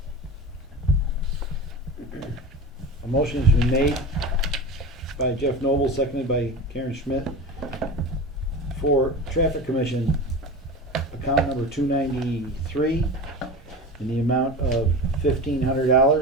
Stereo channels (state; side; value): normal; both; correlation 0.29